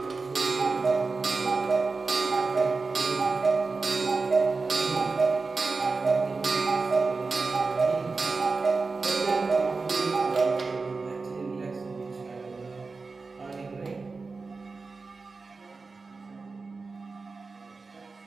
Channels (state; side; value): quieter; left; 4.1 dB